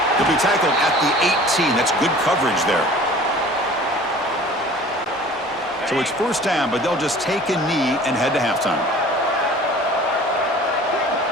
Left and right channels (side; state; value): both; normal; correlation 0.46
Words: He'll be tackled at the 18. That's good coverage there. So it's 1st down, but they'll just take a knee and head to halftime.